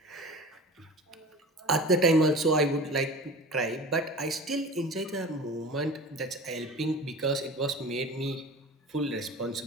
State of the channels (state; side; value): normal; both; correlation 0.36